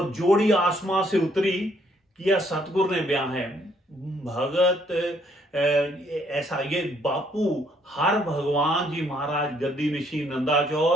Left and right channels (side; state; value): both; normal; correlation 0.68